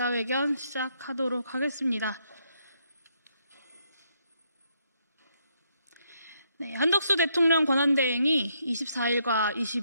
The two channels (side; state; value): both; inverted; correlation -0.75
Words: 시작하도록 하겠습니다. 네, 한덕수 대통령 권한대행이 24일과